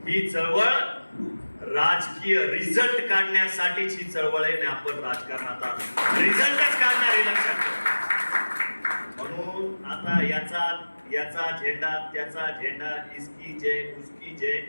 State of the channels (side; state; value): both; inverted; correlation -1.00